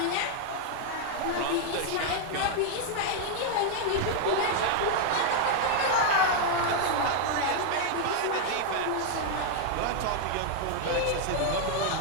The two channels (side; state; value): both; different; correlation 0.00